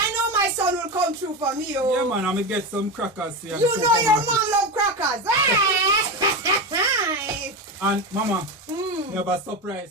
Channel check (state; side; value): normal; both; correlation 0.19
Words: know my son will come through for me. Oh. Yeah, man. I'm going to get some crackers here. You know your mom love crackers. And mama, you have a